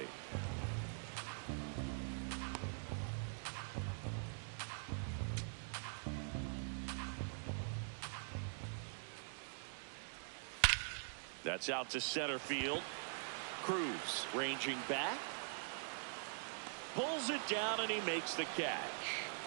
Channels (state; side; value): silent; left; digital silence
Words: That's out to center field. Cruz ranging back. Pulls it down and he makes the catch.